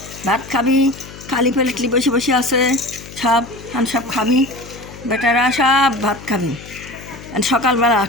ভাত খাবি খালি প্লেটলি বসে বসে আছে সব খাবি বেটারা, সব ভাত খাবি সকালবেলা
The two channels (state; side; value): noise; left; hum, 16 dB below the sound